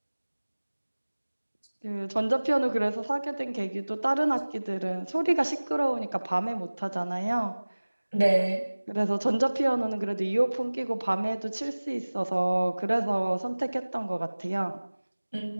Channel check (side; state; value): both; inverted; correlation -1.00